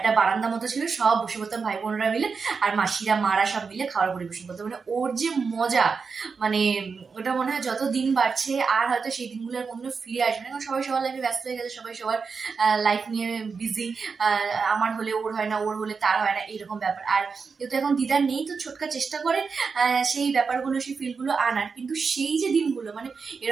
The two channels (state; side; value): quieter; left; 5.2 dB